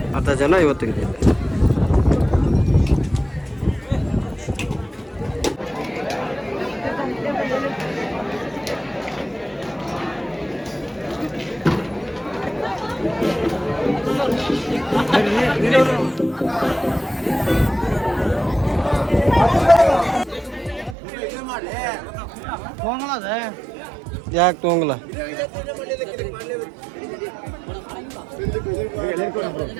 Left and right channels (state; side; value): drops out; left; at 21.0 s